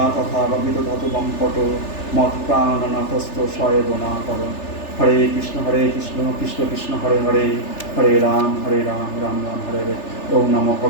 তথা বা বিদধত বঙ্কট মত প্রাণনাথস্থ সয়েবনা কর। হরে কৃষ্ণ কৃষ্ণ কৃষ্ণ হরে হরে হরে রাম রাম রাম হরে হরে। ওম নমো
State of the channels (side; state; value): right; late; 3.4 ms